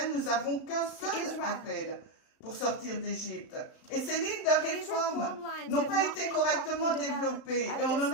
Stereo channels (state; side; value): late; right; 36 ms